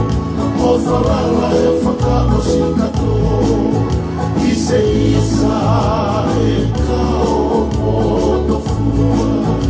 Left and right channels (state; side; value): identical; both; correlation 1.00